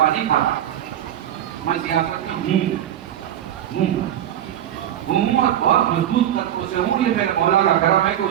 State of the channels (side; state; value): left; quieter; 11.3 dB